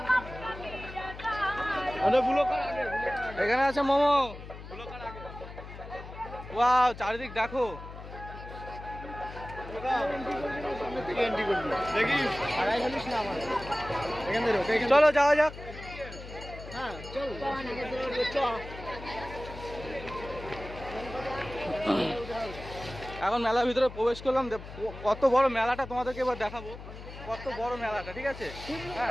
এখানে আছে মোমো, ওয়াও চারিদিক দেখো। চলো যাওয়া যাক। এখন মেলার ভিতরে প্রবেশ করলাম, কত বড় মেলাটা তোমাদেরকে এবার দেখাবো, কত বড় মেলাটা, ঠিক আছে।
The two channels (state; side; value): noise; left; hum, 13 dB below the sound